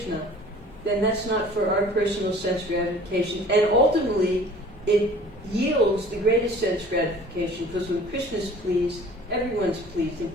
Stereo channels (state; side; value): normal; both; correlation 0.49